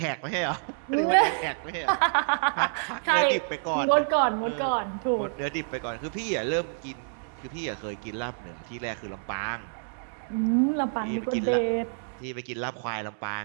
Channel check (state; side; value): silent; left; digital silence